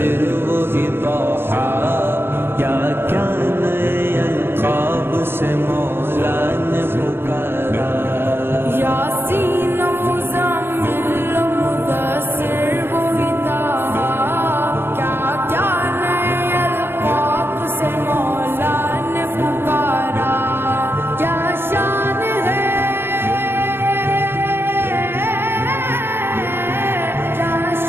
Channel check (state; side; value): late; left; 0.11 ms